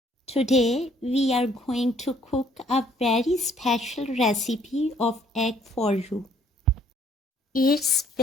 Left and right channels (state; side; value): normal; both; correlation 0.63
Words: Today we are going to cook a very special recipe of egg for you. It's